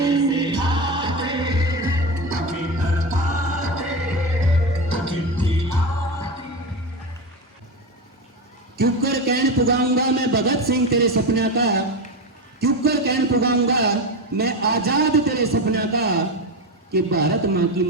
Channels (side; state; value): both; normal; correlation 0.18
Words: क्यों कर कहन पुगाऊंगा मैं भगत सिंह तेरे सपना का, क्यों कर कहन पुगाऊंगा मैं आजाद तेरे सपना का, कि भारत माँ की